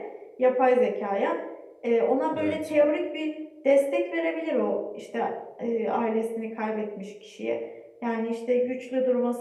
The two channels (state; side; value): identical; both; correlation 1.00